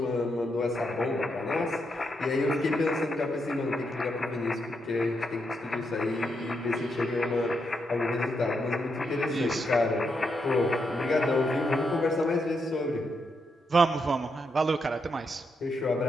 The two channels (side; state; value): both; normal; correlation 0.81